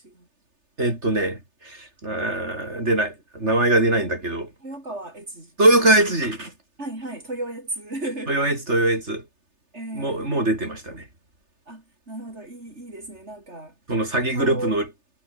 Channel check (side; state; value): left; late; 3.3 ms